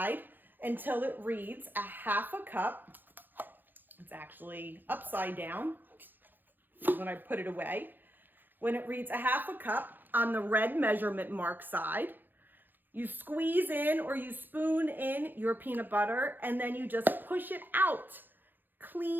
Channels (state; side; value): late; left; 0.091 ms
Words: until it reads a half a cup. It's actually upside down when I put it away. When it reads a half a cup on the red measurement mark side, you squeeze in or you spoon in your peanut butter and then you just push it out